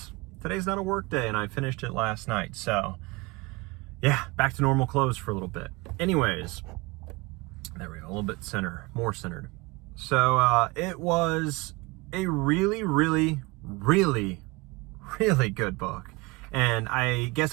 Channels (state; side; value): quieter; left; 24.5 dB